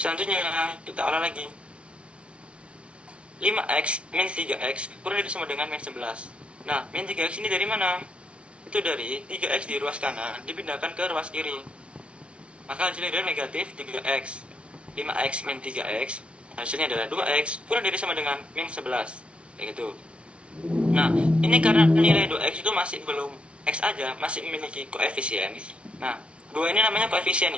kita olah lagi. 5x min 3x kurang dari sama dengan min 11. Nah, min 3x ini dari mana? Itu dari 3x di ruas kanan dipindahkan ke ruas kiri. Maka hasilnya adalah negatif 3x. 5x min 3x hasilnya adalah 2x kurang dari sama dengan min 11, kayak gitu. Nah, ini karena nilai 2x itu masih belum x aja, masih memiliki koefisien. Nah, 2 ini namanya koefisien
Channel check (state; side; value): late; left; 0.060 ms